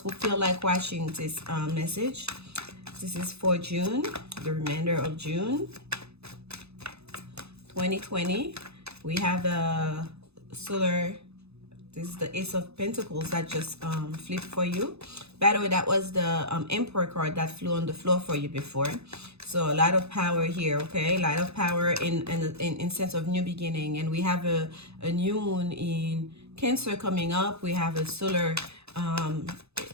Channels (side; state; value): left; late; 0.79 ms